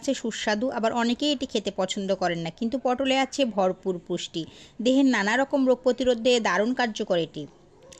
সুস্বাদু, আবার অনেকেই এটি খেতে পছন্দ করেন না, কিন্তু পটলে আছে ভরপুর পুষ্টি। দেহের নানা রকম রোগ প্রতিরোধে দারুণ কার্যকর এটি।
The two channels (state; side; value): identical; both; correlation 1.00